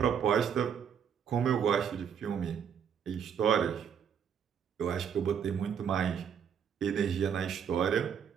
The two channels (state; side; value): quieter; left; 7.9 dB